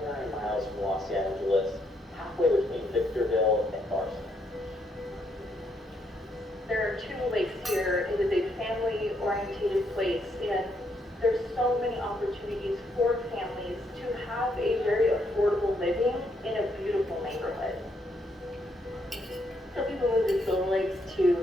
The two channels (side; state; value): both; normal; correlation 0.74